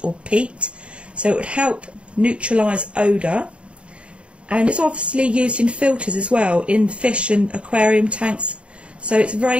or peat. So it would help neutralise odour. And it's obviously used in filters as well, in fish and aquarium tanks. So it's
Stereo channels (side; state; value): left; late; 0.059 ms